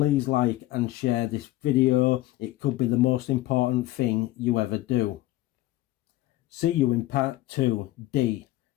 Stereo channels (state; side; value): quieter; right; 16.3 dB